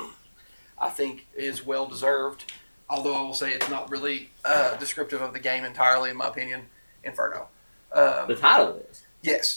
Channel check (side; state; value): both; inverted; correlation -1.00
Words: I think is well deserved, although I will say it's not really descriptive of the game entirely, in my opinion. Inferno. The title is.